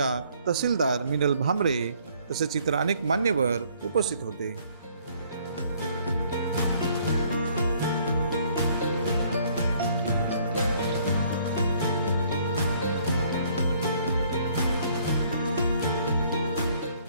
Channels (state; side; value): inverted; both; correlation -0.63